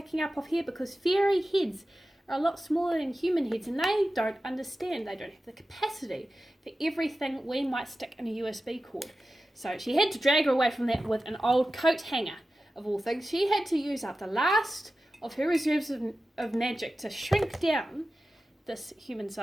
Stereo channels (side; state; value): both; normal; correlation 0.94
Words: up off here, because fairy heads are a lot smaller than human heads, and they don't understand, they don't have the capacity for everything we might stick in a USB cord. So she had to drag her away from that with an old coat hanger, of all things. She had to use up the last of her reserves of magic to shrink down this